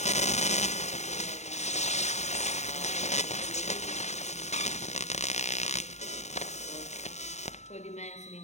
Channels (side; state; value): right; late; 0.33 ms